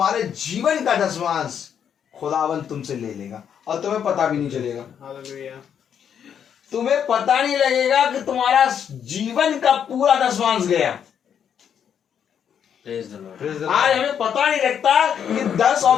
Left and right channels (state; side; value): quieter; right; 8.3 dB